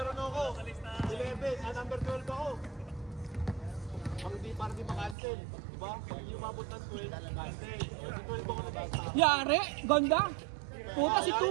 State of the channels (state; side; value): drops out; left; at 5.2 s